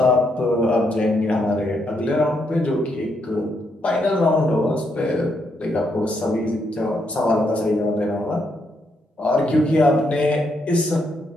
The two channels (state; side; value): normal; both; correlation 0.77